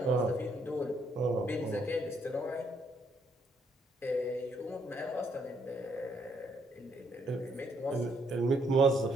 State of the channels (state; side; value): normal; both; correlation 0.72